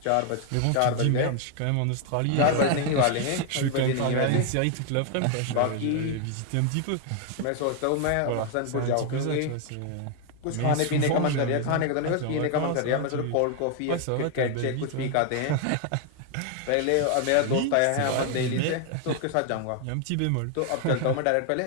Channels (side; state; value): both; different; correlation 0.00